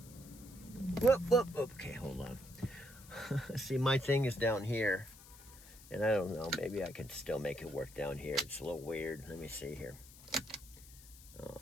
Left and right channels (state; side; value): noise; left; hiss, 20 dB below the sound